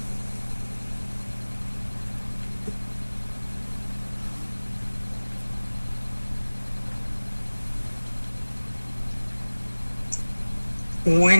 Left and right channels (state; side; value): inverted; both; correlation -1.00